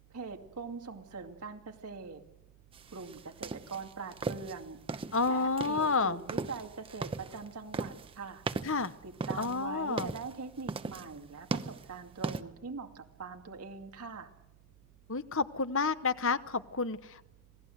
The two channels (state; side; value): noise; right; hum, 25 dB below the sound